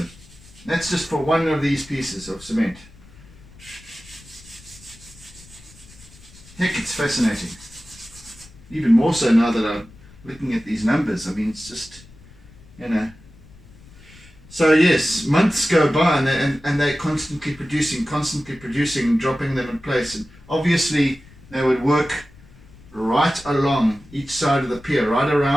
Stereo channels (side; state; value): left; noise; rumble, 23 dB below the sound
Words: That's just for one of these pieces of cement. Heck, it's fascinating. Even more so now that I'm looking at these numbers. I mean, it's just, So yes, months go by and they're constantly producing, dropping them in place. And obviously they would work right along each side of the pier, right